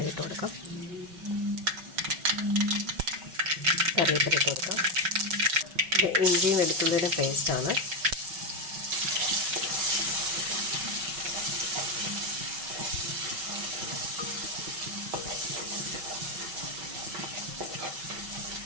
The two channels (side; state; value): left; late; 5.3 ms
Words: കൊടുക്കാം. കറിവേപ്പില ഇട്ട് കൊടുക്കാം. ഇത് ഇഞ്ചിയും വെളുത്തുള്ളിയുടെ പേസ്റ്റാണ്.